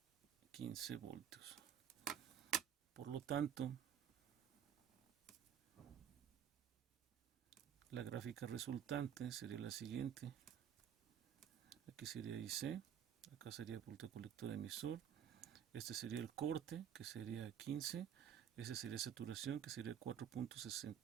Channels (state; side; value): quieter; left; 9.0 dB